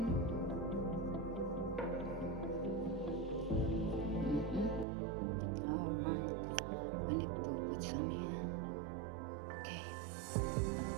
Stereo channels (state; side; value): drops out; left; at 4.9 s